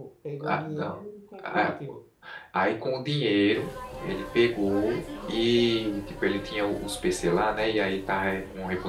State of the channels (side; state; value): both; identical; correlation 1.00